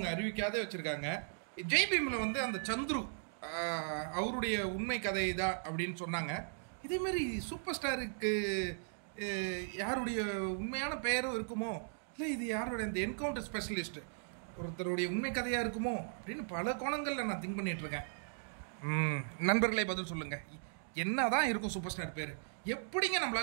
அறிவிக்காதே வச்சுருக்காங்க. ஜெய்பீமில் வந்து அந்த சந்துரு அவருடைய உண்மை கதை தான் அப்படின்னு சொன்னாங்க. இதேமாரி சூப்பர் ஸ்டாருக்கு யாருடைய உண்மையான பெயரும் இருக்குமோ, இல்லை இது யாருடைய இந்த என்கவுண்டர் ஸ்பெஷலிஸ்ட் ஒருத்தருடைய உண்மை கதையாக இருக்குமோ அப்படின்னு பல கோணங்களில் நான் திங்க் பண்ணிகிட்ருக்கேன். நண்பர்களே பதில் சொல்லுங்கள், என்ன தான் இருக்கும் சூப்பர் ஸ்டார் பேர்? எப்படிங்க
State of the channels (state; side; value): silent; left; digital silence